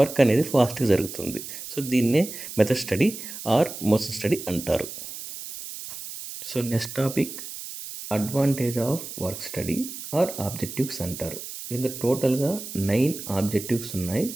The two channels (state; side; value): noise; right; hiss, 10 dB below the sound